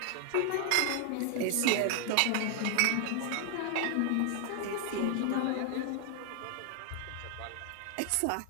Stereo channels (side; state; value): both; different; correlation 0.00